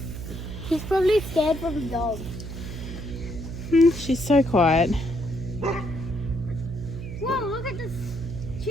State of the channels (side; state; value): right; noise; hum, 8 dB below the sound